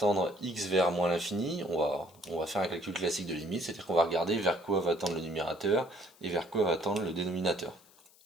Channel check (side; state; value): left; noise; hiss, 27 dB below the sound